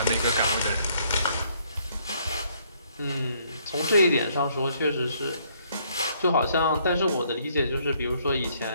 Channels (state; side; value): inverted; both; correlation -0.67